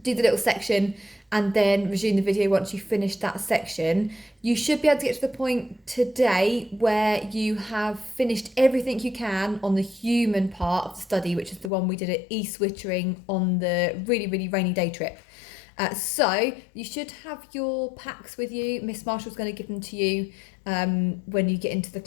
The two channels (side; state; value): right; drops out; at 11.7 s